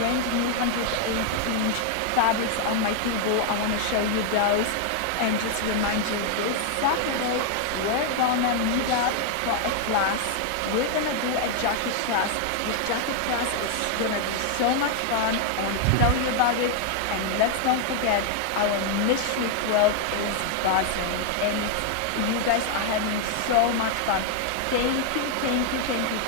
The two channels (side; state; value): both; different; correlation 0.00